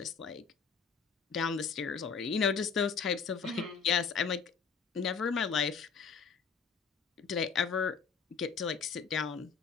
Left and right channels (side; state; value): right; quieter; 6.0 dB